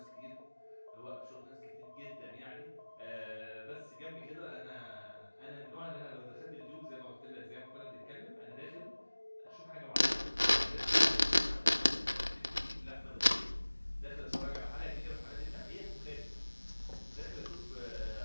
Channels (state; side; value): inverted; both; correlation -1.00